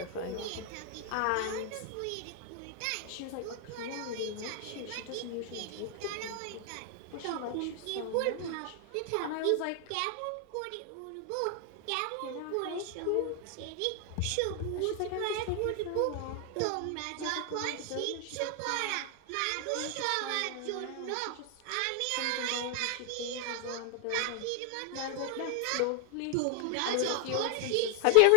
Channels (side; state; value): both; different; correlation 0.00